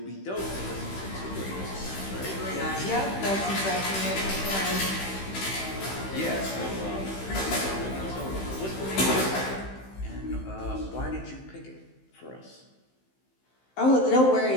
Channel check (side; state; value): right; late; 15 ms